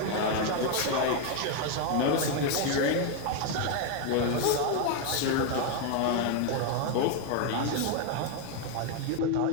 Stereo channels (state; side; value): different; both; correlation 0.01